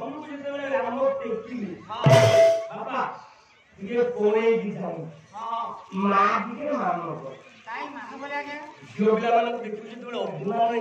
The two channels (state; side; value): identical; both; correlation 1.00